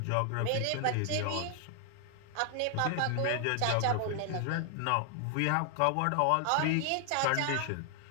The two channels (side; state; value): both; different; correlation 0.00